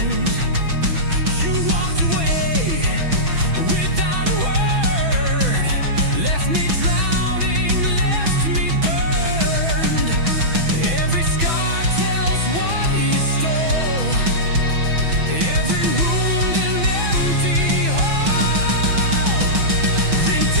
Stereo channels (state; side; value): late; left; 6.1 ms